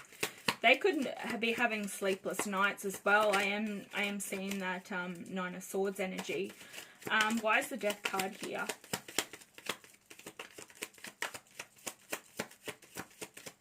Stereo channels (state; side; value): identical; both; correlation 1.00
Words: They could be having sleepless nights as well. I am seeing that Nine of Swords energy. Why is the Death card here?